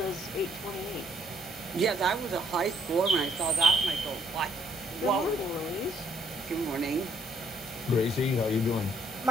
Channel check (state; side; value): normal; both; correlation 0.67